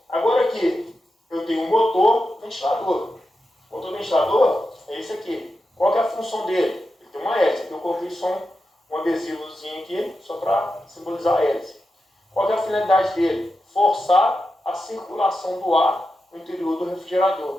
agora aqui eu tenho um motor ventilador. O motor ventilador é esse aqui. Qual que é a função dele? Ele tem uma hélice. Aqui eu coloquei só um adesivozinho aqui, só para simbolizar a hélice. Qual que é a finalidade dele? Forçar a circulação do ar no interior do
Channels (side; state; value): both; normal; correlation 0.90